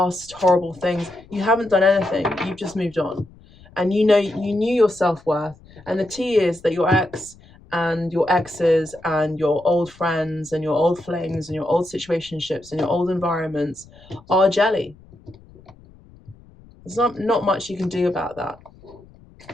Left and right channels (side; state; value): left; noise; rumble, 24 dB below the sound